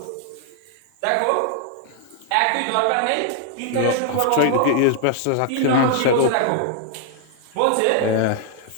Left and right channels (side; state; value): both; different; correlation 0.00